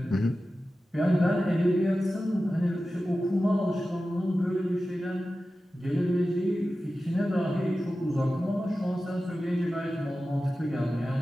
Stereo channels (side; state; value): both; normal; correlation 0.94